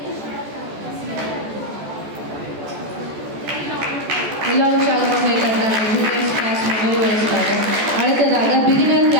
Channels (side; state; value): left; late; 14 ms